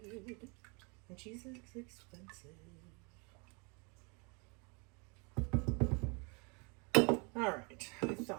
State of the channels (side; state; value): left; quieter; 32.7 dB